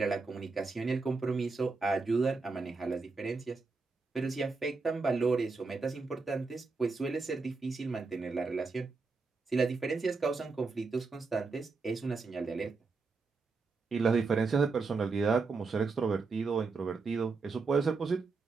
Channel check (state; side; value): quieter; left; 4.2 dB